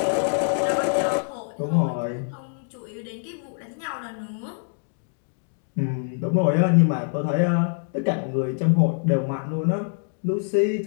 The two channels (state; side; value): silent; right; digital silence